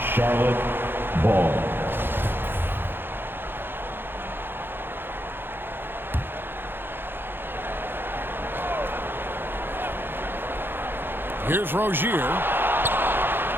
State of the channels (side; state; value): left; late; 0.10 ms